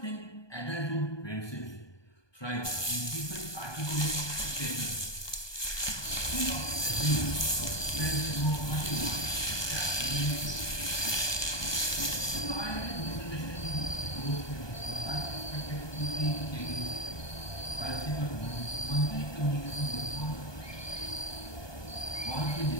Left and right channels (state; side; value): late; right; 1.2 ms